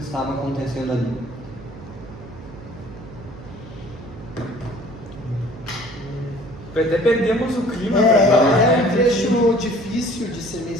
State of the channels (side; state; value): right; noise; hum, 17 dB below the sound